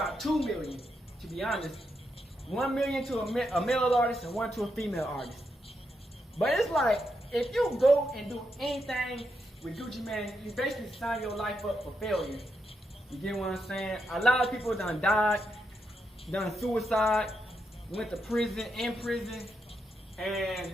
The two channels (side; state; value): both; normal; correlation 0.83